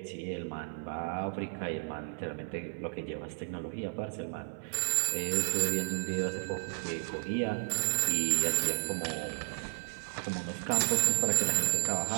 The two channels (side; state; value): left; silent; 56 dB below the other